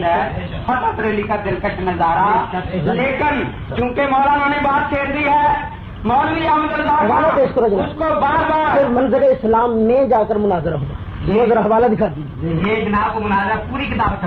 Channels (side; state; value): both; identical; correlation 1.00